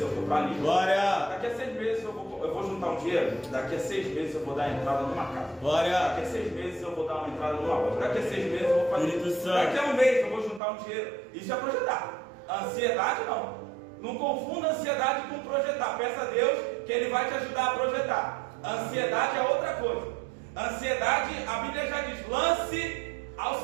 eu vou para ali. Glória. Daqui a 6 meses eu vou juntar um dinheiro. Daqui a 6 meses eu vou dar entrada numa casa. Glória. Daqui a 6 meses eu vou dar uma entrada numa loja. Daqui a 6 meses eu vou fazer. Espírito Santo. Daqui a um mês eu vou juntar um dinheiro. Isso é projetar. Ansiedade não. Não confunda ansiedade com projetar. Peça a Deus que Ele vai te ajudar a projetar. Ansiedade é outra coisa. Ansiedade, a Bíblia já diz, lance ao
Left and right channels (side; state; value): left; drops out; at 10.6 s